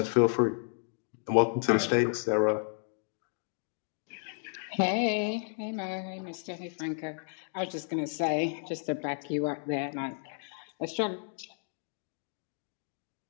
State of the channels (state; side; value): silent; right; 56 dB below the other